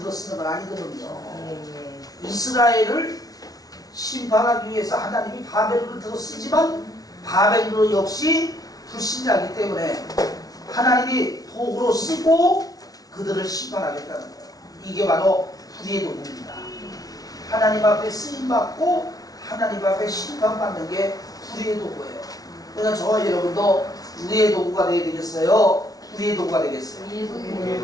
건 아니거든요. 이스라엘을 심판하기 위해서 하나님이 바벨론을 들어쓰지만 바벨론 역시 불신자이기 때문에 하나님이 도구로 쓰고 그들을 심판하겠다는 거예요. 이게 바로 불의의 도구입니다. 하나님 앞에 쓰임받고 하나님 앞에 심판받는 게 불의의 도구예요. 그러니까 저와 여러분도 의의 도구가 되어야 되겠어요? 불의의 도구가 되겠어요?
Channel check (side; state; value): right; late; 0.18 ms